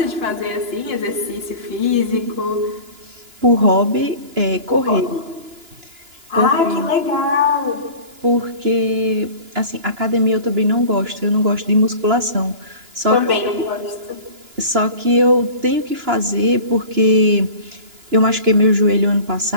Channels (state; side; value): late; left; 2.9 ms